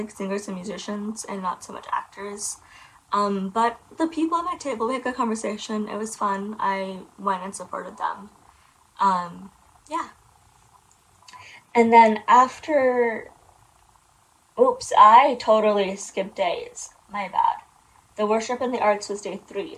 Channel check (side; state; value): both; identical; correlation 1.00